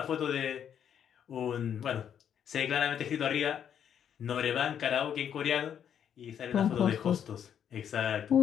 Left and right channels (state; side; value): quieter; right; 8.8 dB